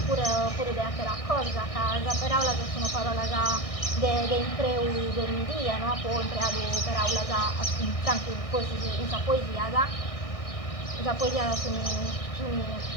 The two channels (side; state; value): right; late; 1.6 ms